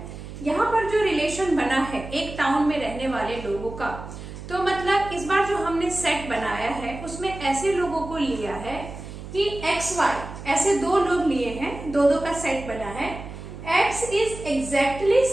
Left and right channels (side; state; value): right; noise; hum, 12 dB below the sound